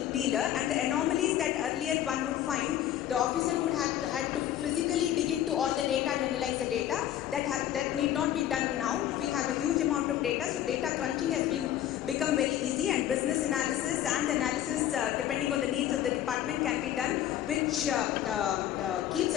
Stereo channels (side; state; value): right; quieter; 11.8 dB